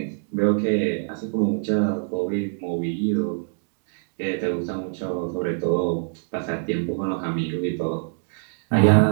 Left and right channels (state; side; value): silent; left; digital silence